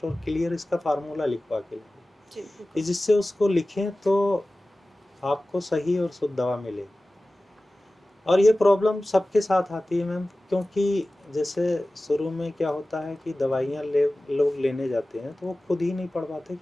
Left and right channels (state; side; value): normal; both; correlation 0.97